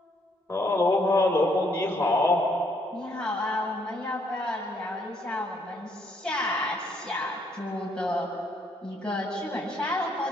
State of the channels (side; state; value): both; normal; correlation 0.70